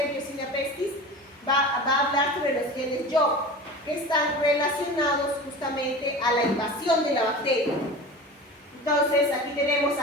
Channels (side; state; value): both; normal; correlation 0.34